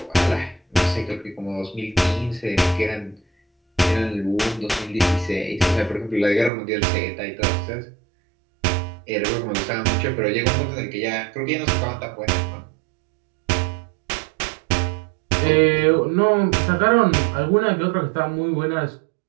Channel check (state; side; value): drops out; left; at 6.5 s